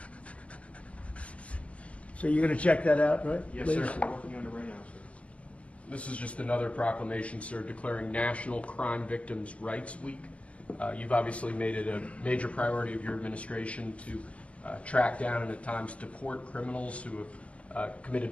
So you're going to check that out, right? Yes, please? sir. We're working on it right now, sir. This is just another proclamation, sir, declaring National Crime Victims' Rights Week. You've obviously made it a major priority of your administration to track down and at times deport criminals who have committed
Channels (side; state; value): right; late; 0.063 ms